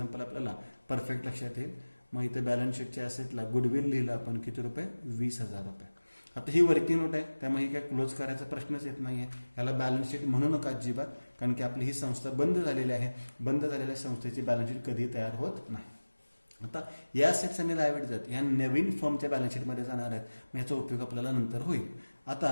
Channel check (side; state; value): both; inverted; correlation -1.00